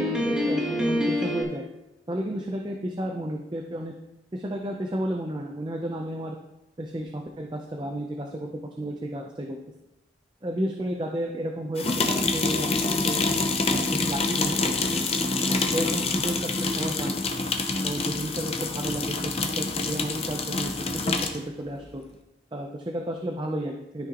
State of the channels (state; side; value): normal; both; correlation 0.62